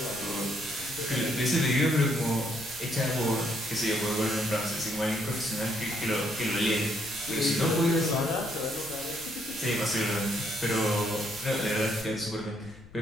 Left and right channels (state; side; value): noise; left; rumble, 21 dB below the sound